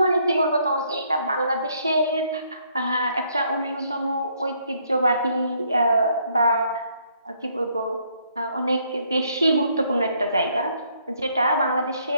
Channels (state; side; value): inverted; both; correlation -0.69